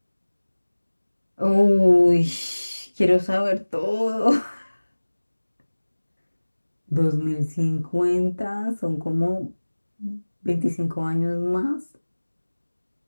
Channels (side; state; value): both; inverted; correlation -1.00